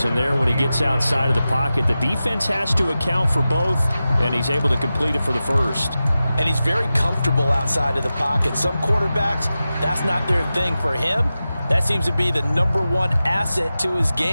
And there, when he gets outside of the pocket, the defense has to account for both, and he's able to complete it for the first. And he's very comfortable outside of the pocket. Some quarterbacks, that's not their thing. For him, that seems to be the #1 asset to his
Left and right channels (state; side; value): inverted; both; correlation -0.94